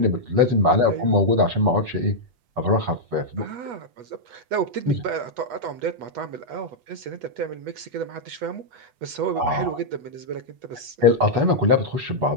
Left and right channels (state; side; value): late; left; 8.2 ms